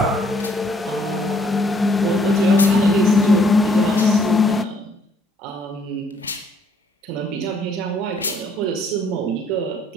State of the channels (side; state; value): both; normal; correlation 0.65